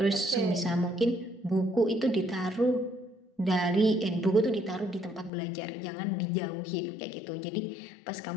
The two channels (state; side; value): drops out; right; at 5.3 s